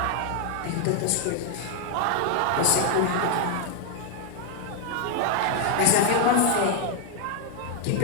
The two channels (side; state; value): both; different; correlation 0.00